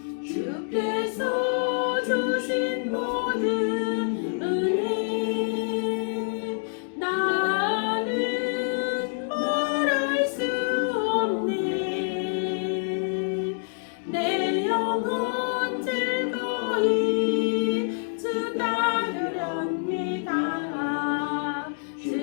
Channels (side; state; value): right; silent; digital silence